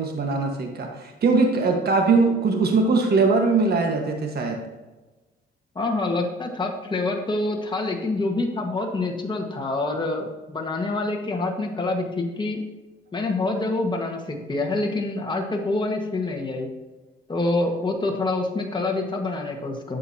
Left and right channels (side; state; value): both; normal; correlation 0.52